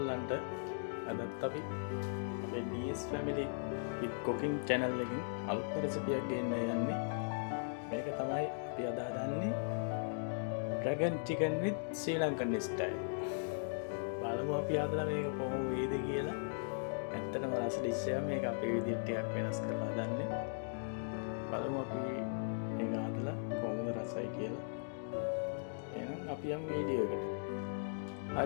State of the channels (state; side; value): silent; right; digital silence